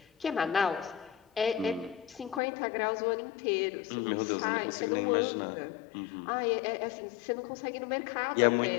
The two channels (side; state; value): right; drops out; at 2.4 s